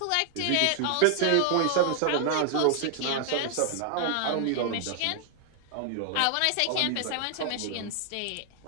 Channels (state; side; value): different; both; correlation 0.00